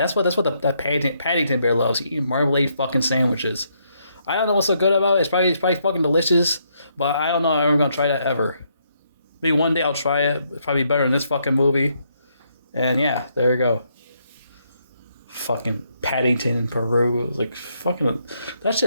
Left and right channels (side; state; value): both; inverted; correlation -0.75